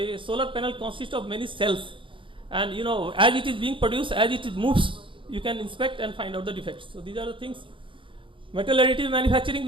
solar panel consists of many cells, and as it is being produced, as it moves, you can inspect and find out the defects. So these are the things. Metal additive manufacturing,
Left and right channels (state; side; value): late; left; 0.25 ms